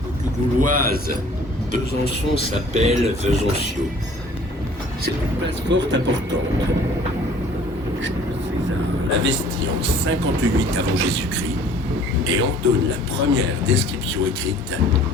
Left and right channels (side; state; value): both; normal; correlation 0.52